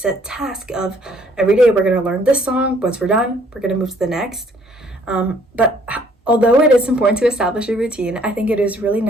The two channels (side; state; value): both; normal; correlation 0.62